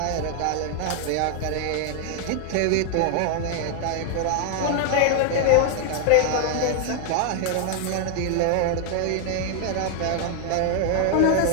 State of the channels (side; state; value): both; different; correlation 0.00